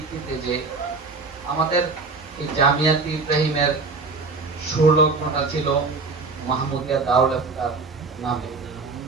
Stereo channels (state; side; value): quieter; left; 4.0 dB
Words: যে আমাদের এই জামিয়াত ইব্রাহিমের সুরলগ্নটা ছিল মাহমুদিয়া দারুল ইফতার নামে।